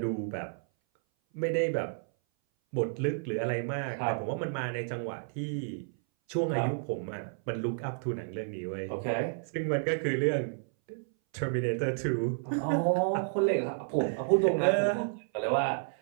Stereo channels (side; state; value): left; silent; 57 dB below the other